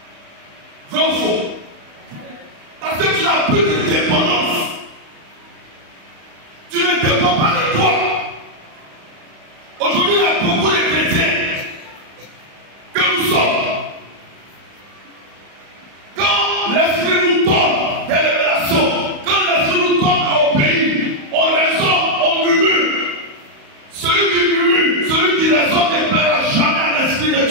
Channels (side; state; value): left; late; 35 ms